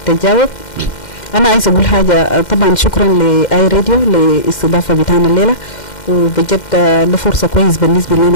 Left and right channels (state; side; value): late; right; 2.1 ms